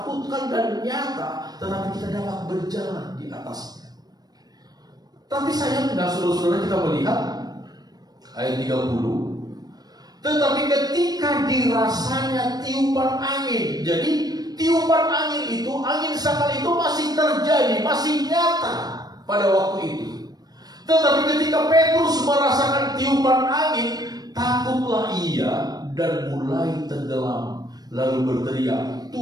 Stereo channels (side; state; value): left; late; 0.19 ms